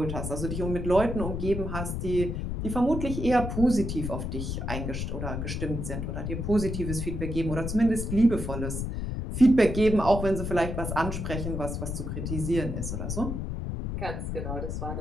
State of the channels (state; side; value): noise; left; rumble, 3 dB below the sound